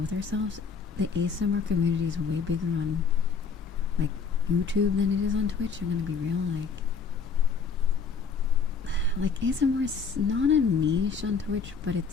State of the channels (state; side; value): quieter; right; 5.5 dB